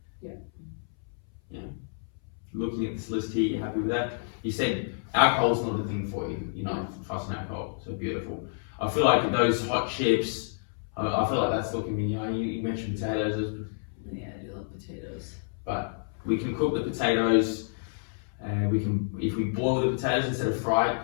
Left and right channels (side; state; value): right; silent; 58 dB below the other